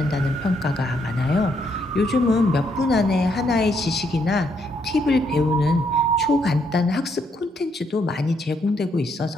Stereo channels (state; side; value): normal; both; correlation 0.74